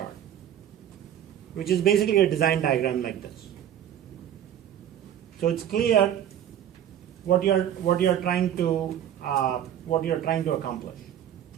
which is basically a design diagram like this. So it's clear what you're trying to accomplish.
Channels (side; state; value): left; quieter; 10.5 dB